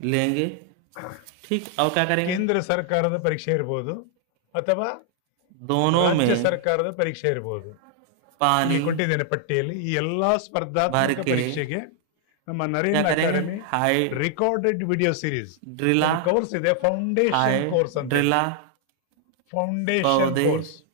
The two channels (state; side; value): different; both; correlation 0.00